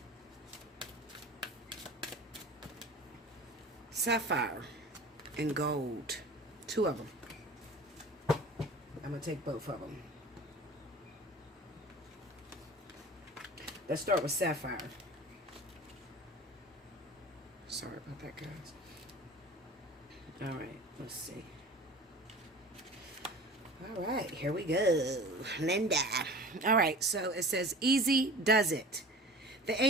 Sapphire and gold. Two of them. I'm going to take both of them. Let's start with Sapphire. Sorry about that, guys. All right, let's see. All right, here we go. Linda. All right, so it says, easy does it. The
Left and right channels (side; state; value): both; normal; correlation 0.40